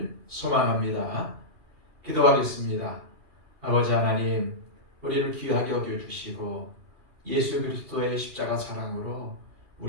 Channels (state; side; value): late; left; 2.7 ms